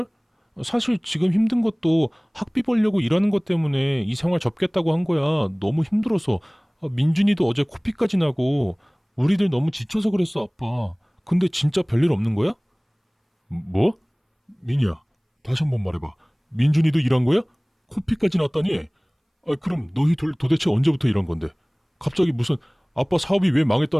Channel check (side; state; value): both; identical; correlation 1.00